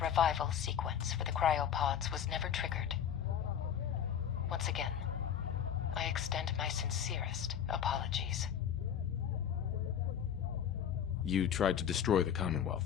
sequence for the cryopods was never triggered. Once again, I extend my sincerest apologies. You tried to destroy the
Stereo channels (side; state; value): right; quieter; 8.9 dB